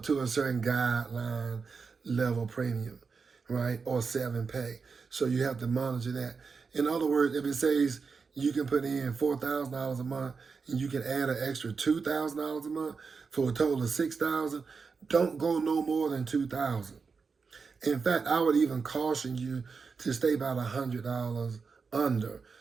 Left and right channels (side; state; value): left; quieter; 5.1 dB